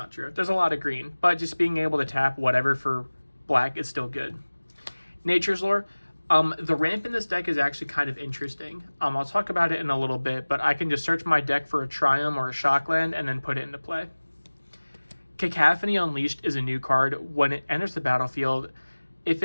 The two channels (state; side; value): inverted; both; correlation -1.00